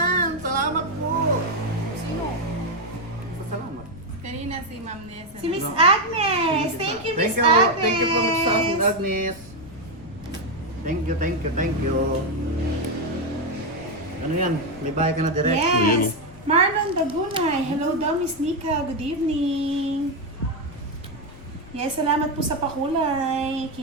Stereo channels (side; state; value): left; noise; rumble, 19 dB below the sound